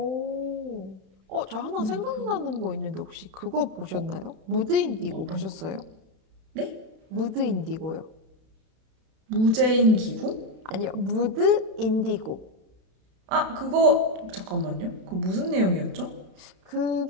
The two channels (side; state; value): left; late; 32 ms